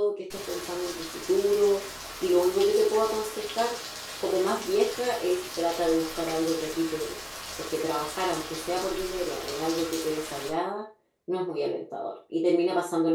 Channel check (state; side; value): identical; both; correlation 1.00